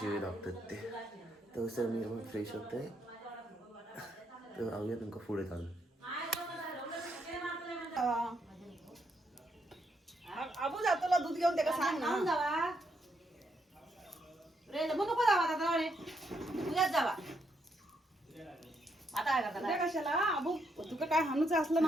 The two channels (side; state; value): both; normal; correlation 0.77